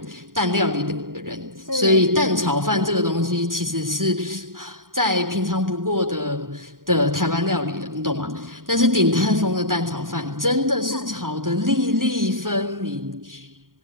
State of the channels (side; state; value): left; late; 0.91 ms